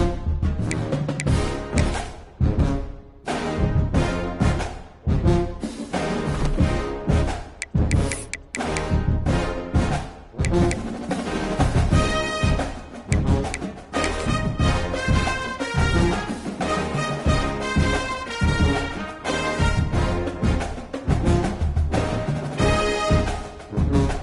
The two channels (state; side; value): identical; both; correlation 1.00